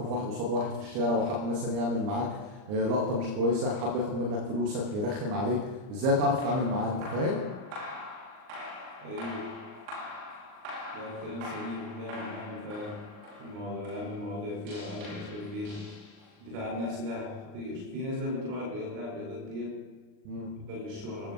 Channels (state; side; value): late; left; 38 ms